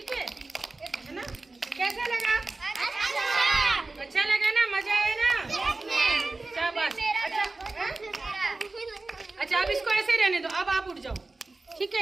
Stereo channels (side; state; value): left; quieter; 3.3 dB